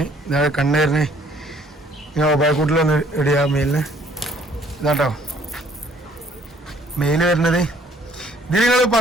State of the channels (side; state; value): both; normal; correlation 0.61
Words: ഇതാണ് കണ്ണേറിന് ഇങ്ങനെ ഒബായക്കൂട്ടിലൊന്ന് ഇടിയാ മെയിലിന്. ഇതാട്ടോ മെയില് വരുന്നത്. ഇത് നിങ്ങൾ